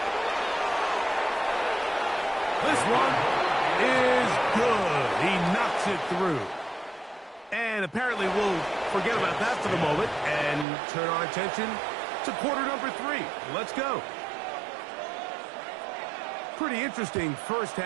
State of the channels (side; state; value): left; drops out; at 10.7 s